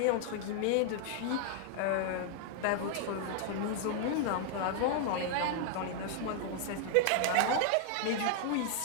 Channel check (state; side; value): different; both; correlation 0.00